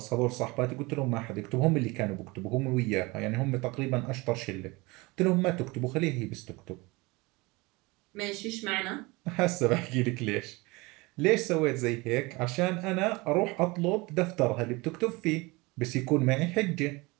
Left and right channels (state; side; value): quieter; left; 24.2 dB